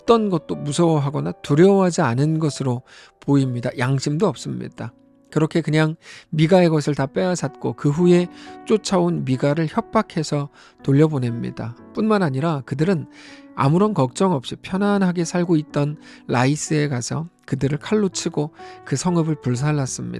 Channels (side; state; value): both; identical; correlation 1.00